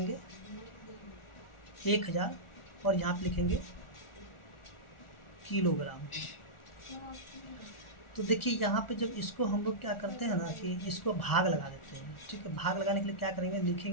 1000 और यहाँ पे लिखेंगे किलोग्राम। तो देखिए यहाँ पे जब इसको हम लोग क्या करते हैं ना कि इसको भाग लगा देते हैं। ठीक है, भाग लगाने के लिए क्या करेंगे,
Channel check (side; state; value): right; late; 1.4 ms